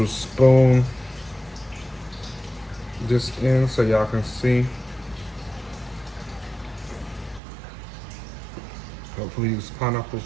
spoon this in so y'all can see. Hopefully these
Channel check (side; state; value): left; drops out; at 7.4 s